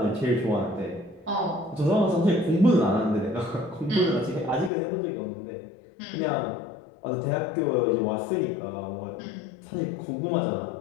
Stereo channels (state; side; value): drops out; right; at 4.7 s